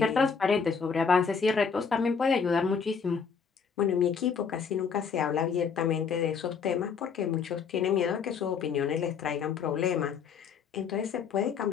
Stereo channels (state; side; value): quieter; right; 6.1 dB